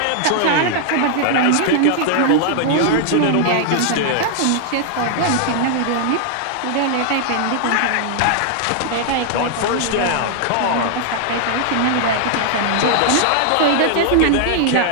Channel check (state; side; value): different; both; correlation -0.01